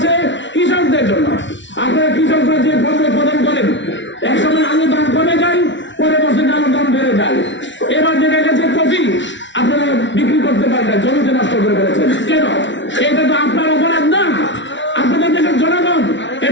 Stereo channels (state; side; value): late; right; 0.54 ms